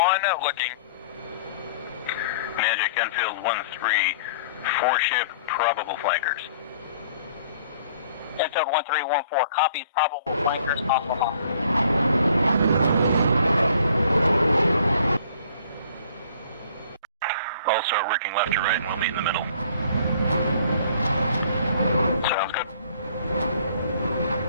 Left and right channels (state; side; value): inverted; both; correlation -0.55